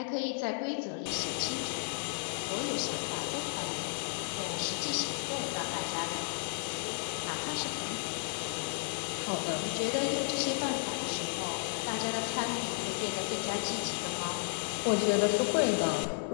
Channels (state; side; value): silent; right; digital silence